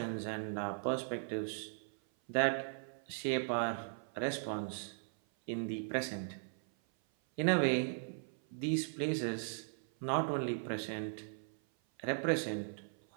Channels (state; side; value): silent; left; 52 dB below the other